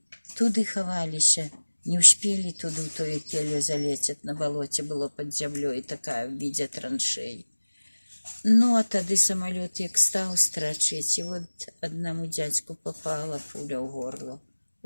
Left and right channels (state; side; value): inverted; both; correlation -1.00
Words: туды ховались. Не успели туды в тою келью залететь, на болоте было под землей такая в виде траншей. Ну, а тогда самолет як стал страчить, и вот одному дядьку попала пуля в горло.